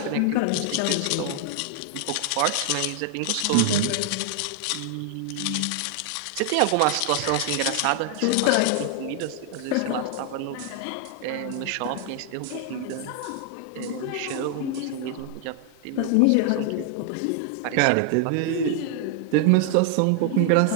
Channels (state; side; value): different; both; correlation 0.00